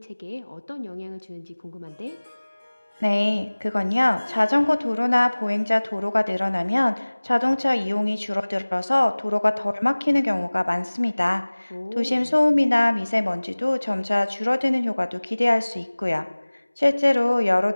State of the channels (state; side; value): inverted; both; correlation -1.00